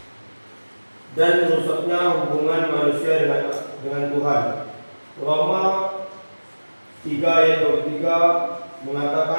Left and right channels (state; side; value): inverted; both; correlation -1.00